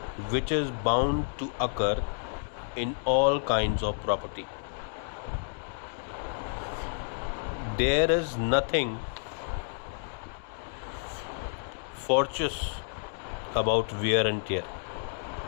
which is bound to occur in all kinds of property. There is nothing fortuitous about wear and tear.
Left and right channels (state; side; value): silent; right; digital silence